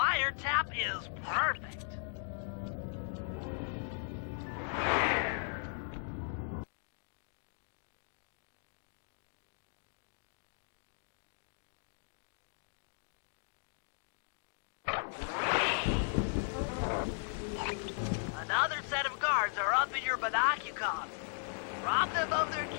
is perfect. Another set of guards are up in your binocucom. Rob them of their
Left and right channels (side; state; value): right; silent; digital silence